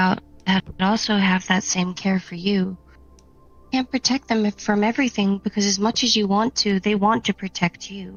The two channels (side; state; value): both; identical; correlation 1.00